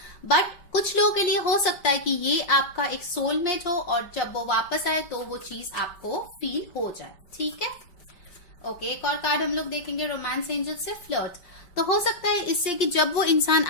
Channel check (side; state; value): right; late; 5.6 ms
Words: बट कुछ लोगों के लिए हो सकता है कि ये आपका एक सोलमेट हो और जब वो वापस आए तो वो चीज आपको फील हो जाए। ठीक है, ओके, एक और कार्ड हम लोग देखेंगे रोमांस एंजल से, फ्लर्ट। तो हो सकता है इससे कि जब वो इंसान